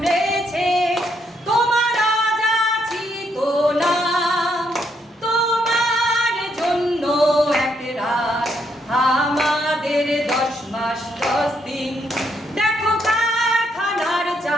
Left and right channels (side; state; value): both; normal; correlation 0.75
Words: তোমার আজাছি তো নাম। তোমার জন্য এক রাত, আমাদের 10 মাস 10 দিন। দেখো কারখানার